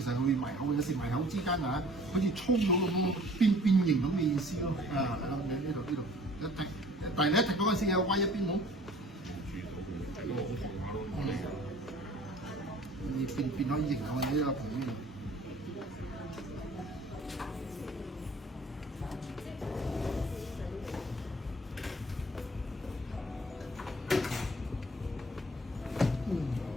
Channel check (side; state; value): both; normal; correlation 0.51